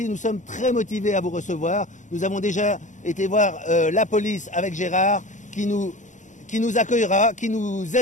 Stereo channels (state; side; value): late; right; 0.36 ms